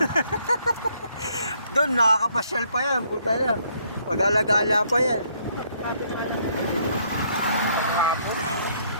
Doon, nakakapasyal pa yan. Puta yan. Pag-alagala pa yan.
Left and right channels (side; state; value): both; inverted; correlation -0.68